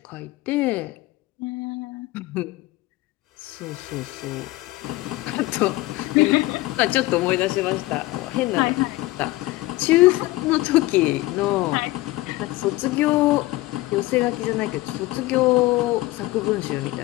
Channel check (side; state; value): right; quieter; 19.2 dB